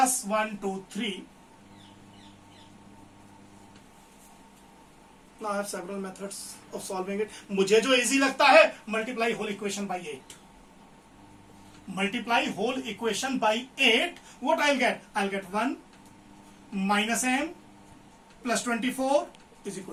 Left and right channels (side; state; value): both; identical; correlation 1.00